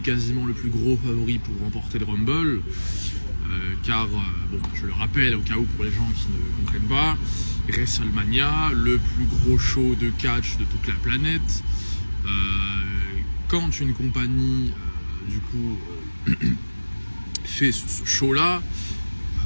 quasiment le plus gros favori pour remporter le Rumble. Car, je le rappelle au cas où pour les gens qui ne comprennent pas, WrestleMania, le plus gros show de catch de toute la planète. Quand une compagnie, fait ce show-là,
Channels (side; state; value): both; inverted; correlation -1.00